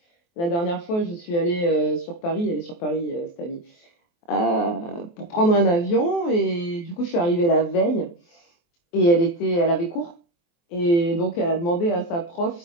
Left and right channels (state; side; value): late; right; 23 ms